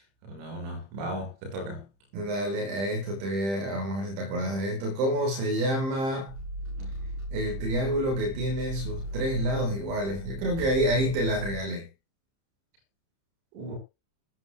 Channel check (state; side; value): late; left; 30 ms